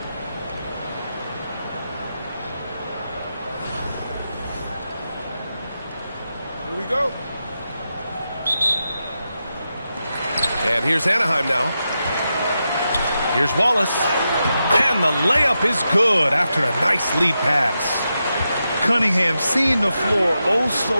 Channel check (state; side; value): inverted; both; correlation -0.88